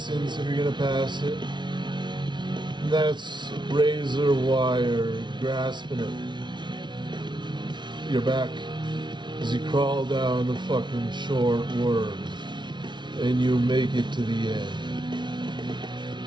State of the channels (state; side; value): late; left; 0.22 ms